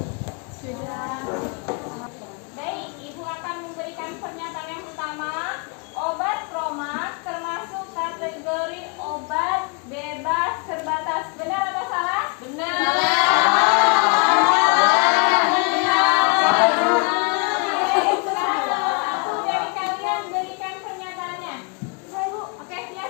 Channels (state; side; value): quieter; right; 34.5 dB